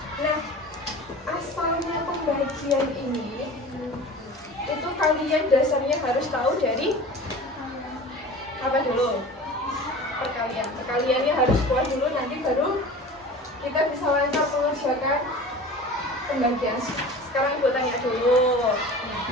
Nah, asalnya pembagian ini itu kalian dasarnya harus tahu dari apa dulu? Perkalian. Perkaliannya harus kuat dulu, nanti baru kita bisa lancar mengerjakan pembagian. Sekarang ibu tanya dulu.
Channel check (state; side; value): normal; both; correlation 0.38